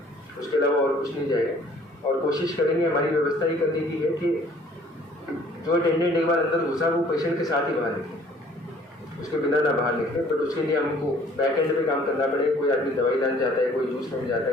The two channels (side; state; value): both; normal; correlation 0.56